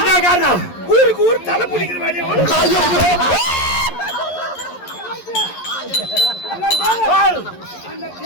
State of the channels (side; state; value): right; late; 11 ms